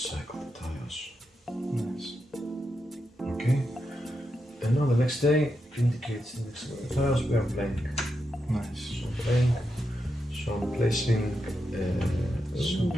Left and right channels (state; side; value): normal; both; correlation 0.86